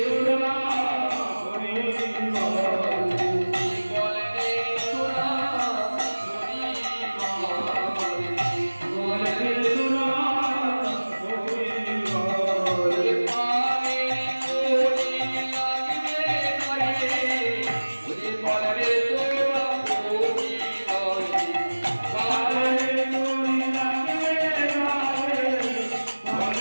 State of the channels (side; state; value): both; inverted; correlation -1.00